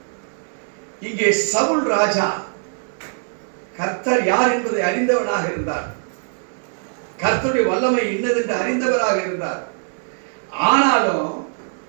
இங்கே சவுல் ராஜா கர்த்தர் யார் என்பதை அறிந்தவனாக இருந்தார். கர்த்தருடைய வல்லமை இன்னதென்று அறிந்தவராக இருந்தார். ஆனாலும்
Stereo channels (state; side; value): silent; left; digital silence